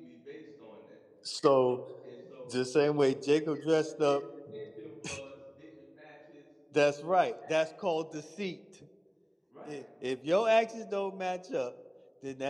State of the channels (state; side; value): identical; both; correlation 1.00